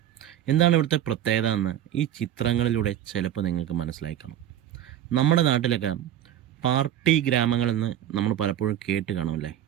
എന്താണ് ഇവിടുത്തെ പ്രത്യേകത എന്ന് ഈ ചിത്രങ്ങളിലൂടെ ചിലപ്പോൾ നിങ്ങൾക്ക് മനസ്സിലായി കാണും. നമ്മുടെ നാട്ടിലൊക്കെ പാർട്ടി ഗ്രാമങ്ങളെന്ന് നമ്മൾ പലപ്പോഴും കേട്ട് കാണുമല്ലേ,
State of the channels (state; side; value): quieter; left; 11.5 dB